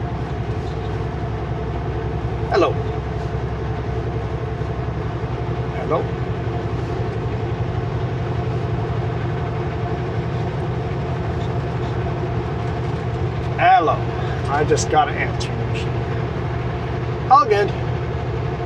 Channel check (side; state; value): both; identical; correlation 1.00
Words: Hello. Hello. Hello. I just got an answering machine. All good.